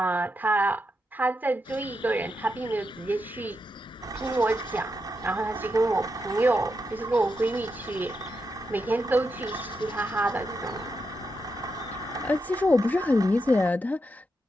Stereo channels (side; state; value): both; normal; correlation 0.85